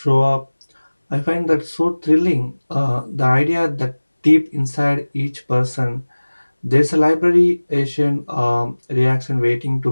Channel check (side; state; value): both; inverted; correlation -1.00